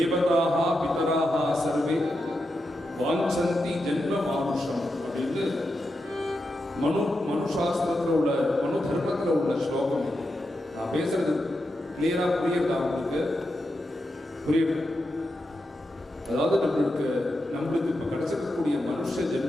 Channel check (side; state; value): both; normal; correlation 0.87